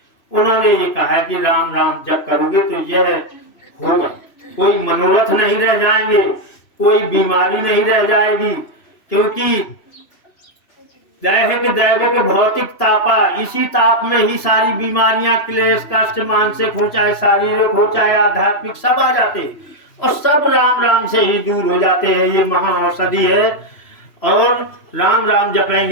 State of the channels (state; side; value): late; right; 3.1 ms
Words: उन्होंने ये कहा कि राम राम जप करोगे तो यह होगा, कोई मनोरथ नहीं रह जाएंगे, कोई बीमारी नहीं रह जाएगी, क्योंकि दैहिक भौतिक तापा, इसी ताप में ही सारी बीमारियां, क्लेश कष्ट मानसिक हो चाहे शारीरिक हो चाहे आध्यात्मिक, सब आ जाते और सब राम राम से ही दूर हो जाते हैं। ये महा औषधि है। और राम राम